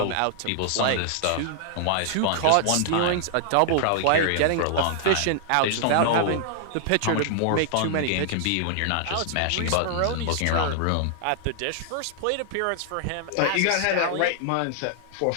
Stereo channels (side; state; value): both; different; correlation -0.01